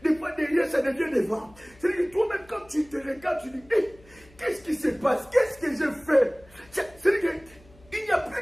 des fois derrière ça devient devant. C'est-à-dire que toi-même quand tu te regardes, tu dis, qu'est-ce qui se passe? Qu'est-ce que je fais? C'est-à-dire qu'il n'y a plus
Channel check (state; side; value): noise; left; hum, 26 dB below the sound